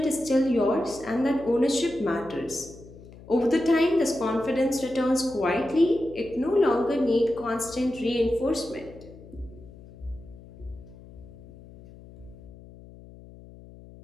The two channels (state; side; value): noise; left; hum, 19 dB below the sound